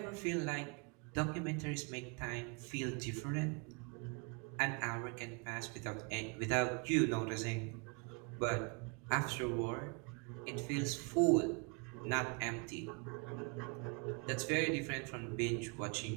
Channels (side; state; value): left; quieter; 33.4 dB